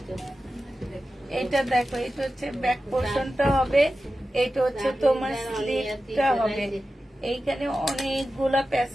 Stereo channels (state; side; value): normal; both; correlation 0.93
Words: এটা দেখো এটা হচ্ছে ব্যাক পোর্শনটা হবে। এটা হচ্ছে তোমার স্লিপটা হবে। এইখানে অনেকগুলা